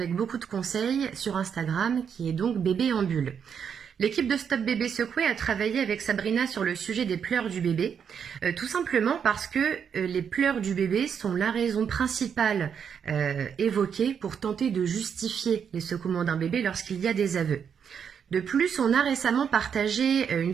beaucoup de conseils sur Instagram, qui est donc Bébé en bulle. L'équipe de Stop Bébé Secoué a travaillé avec Sabrina sur le sujet des pleurs du bébé, tout simplement parce que les pleurs du bébé sont la raison principale évoquée pour tenter de justifier les secouements d'un bébé lorsqu'il y a des aveux. De plus, on a récemment partagé une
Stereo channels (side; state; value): left; quieter; 7.4 dB